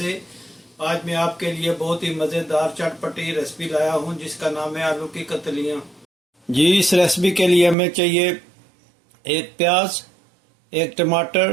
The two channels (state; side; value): drops out; left; at 7.8 s